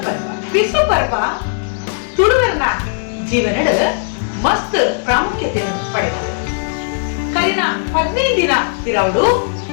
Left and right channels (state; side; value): silent; right; digital silence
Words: ಪರ್ವ ಬಿಸು ಪರ್ವ ತುಳುವರನ ಜೀವನದ ಮಸ್ತ್ ಪ್ರಾಮುಖ್ಯತೆಯನ್ನು ಪಡೆದಿದೆ. ಕರಿನ 15 ದಿನ ಇರವಡು